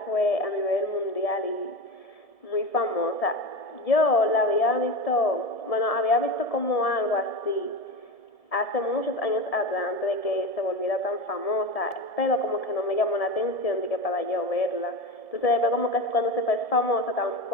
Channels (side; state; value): right; late; 1.7 ms